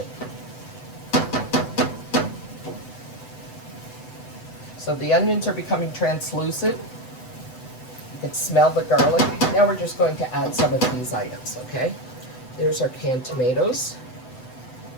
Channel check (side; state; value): right; late; 7.9 ms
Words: So the onions are becoming translucent. You can smell the garlic. Now we're just going to add some of these items, okay? There's our canned tomatoes.